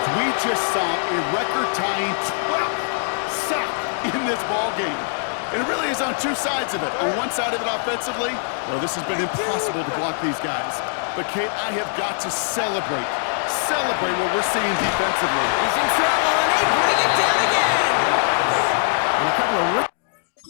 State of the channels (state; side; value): silent; right; digital silence